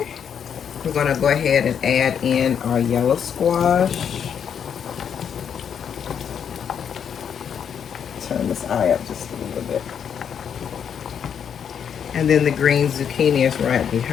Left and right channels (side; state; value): right; quieter; 7.9 dB